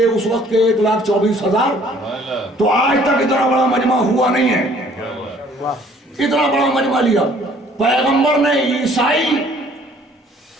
وقت کے 1,24,000 تو آج تک اتنا بڑا مجمع ہوا نہیں ہے. اتنا بڑا مجمع لیا. پیغمبر نے عیسائی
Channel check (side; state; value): both; normal; correlation 0.57